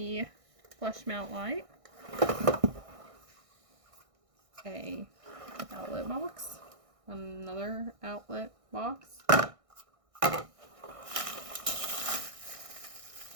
flush mount light. A outlet box. Another outlet box.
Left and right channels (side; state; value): left; late; 1.6 ms